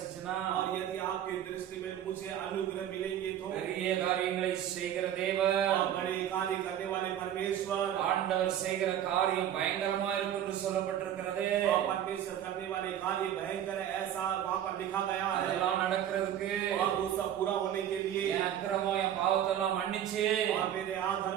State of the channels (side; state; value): left; quieter; 10.6 dB